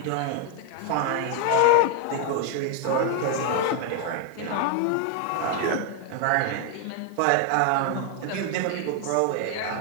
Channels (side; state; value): both; different; correlation 0.00